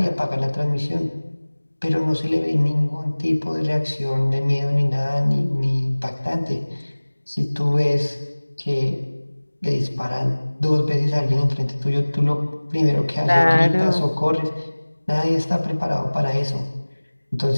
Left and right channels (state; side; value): inverted; both; correlation -1.00